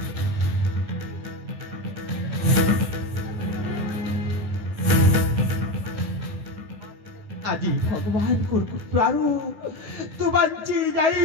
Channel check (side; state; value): left; late; 9.7 ms